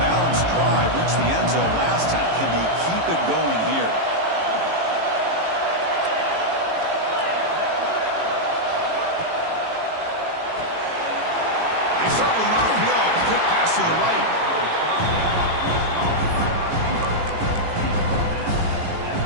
drive. Reached the end zone last time. Can they keep it going here? To the right.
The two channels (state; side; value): late; left; 18 ms